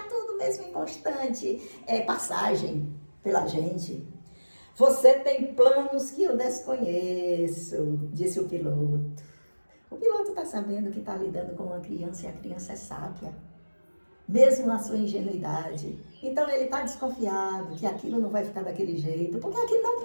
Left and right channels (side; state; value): both; inverted; correlation -1.00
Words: tudo mesmo em constante passagem pela gente. Você tem planos que eu desconheço, disse o piloto. O piloto está sabendo que está lidando com uma criança e a criança é sábia. mesmo na sua ingenuidade. Então ele está desconfiado que aquilo não vai ficar daquele jeito, porque aquilo não